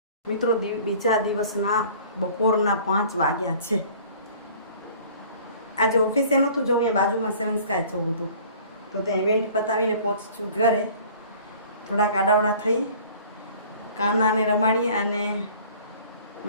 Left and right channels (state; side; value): inverted; both; correlation -0.49